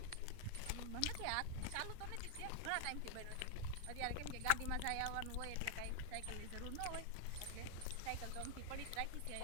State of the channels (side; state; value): both; different; correlation -0.01